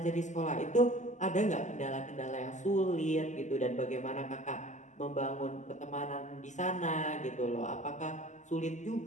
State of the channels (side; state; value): right; late; 0.34 ms